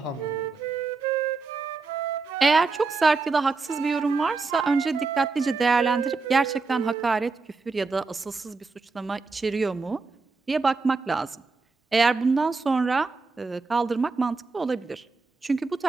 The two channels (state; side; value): quieter; left; 4.2 dB